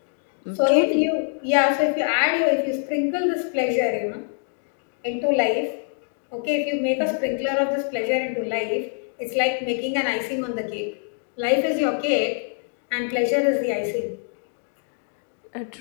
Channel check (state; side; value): silent; right; 58 dB below the other